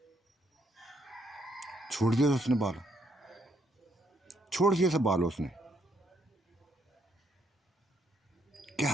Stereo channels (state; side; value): normal; both; correlation 0.73